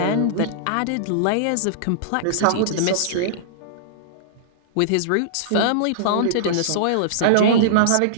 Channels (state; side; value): different; both; correlation -0.02